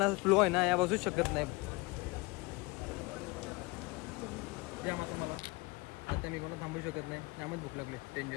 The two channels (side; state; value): right; quieter; 24.6 dB